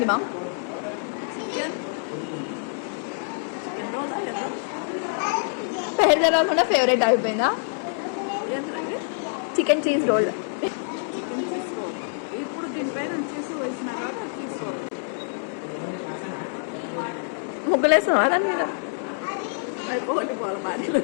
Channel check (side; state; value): right; silent; digital silence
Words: మా? పేరు తెలవకుండా ఫేవరెట్ అయిపోయిందా? Chicken cheese roll. ఇప్పుడు దీనిపైన చీజ్ వేసిన చీజ్ రోల్ ముగ్గులేస్తున్నావా దాని మీద? అయిపోయి పోవాలి భార్యలు.